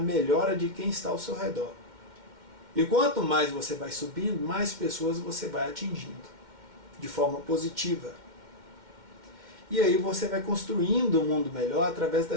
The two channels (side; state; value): left; late; 2.1 ms